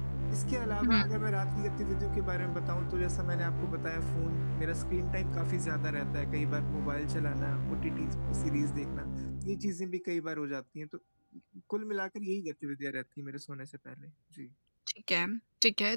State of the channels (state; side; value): inverted; both; correlation -1.00